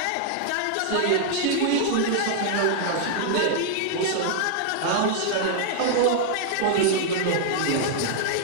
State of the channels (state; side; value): different; both; correlation -0.01